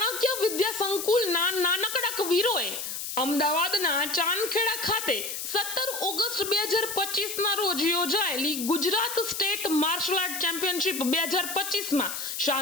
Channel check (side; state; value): left; noise; hiss, 5 dB below the sound